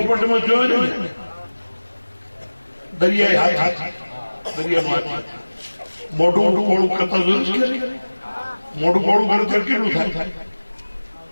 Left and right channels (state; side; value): inverted; both; correlation -1.00